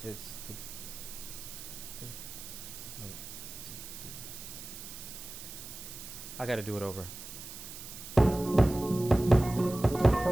It's I gotta do it over.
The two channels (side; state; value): right; noise; hiss, 12 dB below the sound